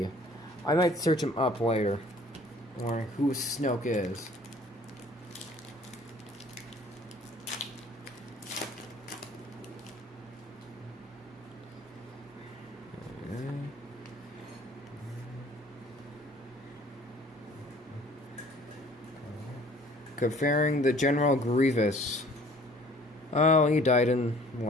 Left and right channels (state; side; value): normal; both; correlation 0.53